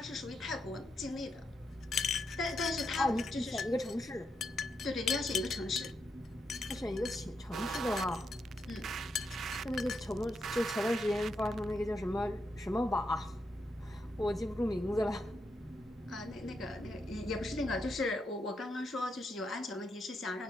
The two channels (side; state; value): both; normal; correlation 0.83